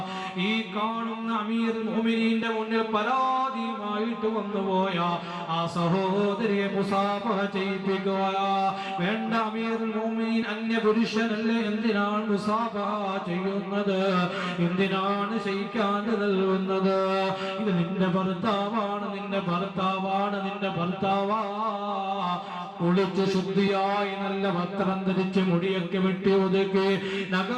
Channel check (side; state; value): both; identical; correlation 1.00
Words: ഈ കാണുന്ന അമീറുൽ മുഅ്മിനീന്റെ മുന്നിൽ പരാതിയുമായിട്ട് വന്നുപോയ ആ സഹോദരിയെ മുസാഫഹ ചെയ്യിപ്പിക്കുക. വേണ്ട, അമീറുൽ മുഅ്മിനീൻ അന്യപുരുഷനല്ലേ, എന്തിനാണ് മുസാഫഹ ചെയ്യുന്നത്? എന്തിനാണ് ശയിക്കാൻ നൽകുന്നത്? ഇത് നിന്റെ ഭർത്താവാണ്, നിന്റെ ഭർത്താവാണ്, നിന്റെ ഭർത്താവാ. കുളിച്ച് ശുദ്ധിയായി നല്ല വസ്ത്രം ധരിച്ച് മുടിയൊക്കെ വെട്ടി ഒതുക്കി